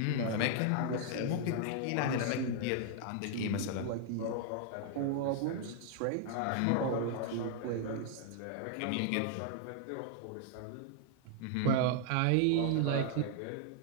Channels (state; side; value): different; both; correlation 0.00